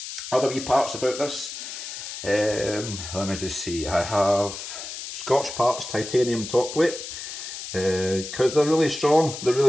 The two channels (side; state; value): left; noise; hiss, 9 dB below the sound